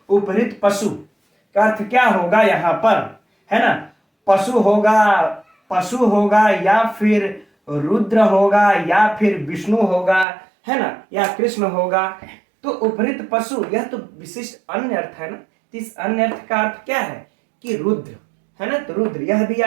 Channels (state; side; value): drops out; left; at 10.2 s